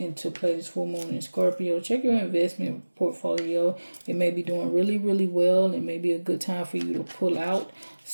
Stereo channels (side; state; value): both; inverted; correlation -1.00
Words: play, this full moon in Scorpio, check your investment portfolio. It may be doing really, really well. It may be a good time for you to pull out